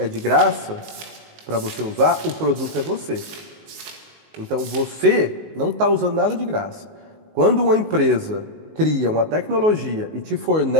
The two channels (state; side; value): late; left; 19 ms